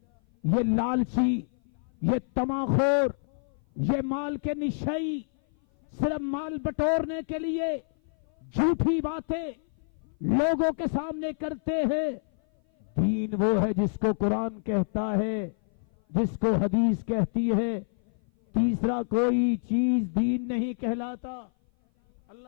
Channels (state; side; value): silent; right; 56 dB below the other